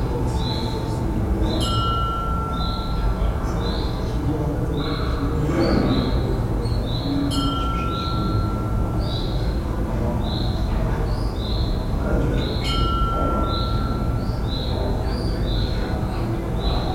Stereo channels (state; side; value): identical; both; correlation 1.00